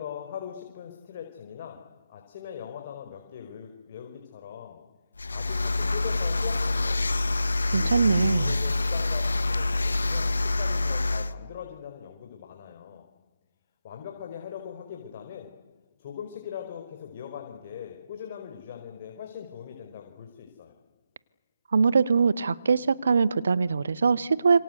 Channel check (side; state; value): both; inverted; correlation -0.89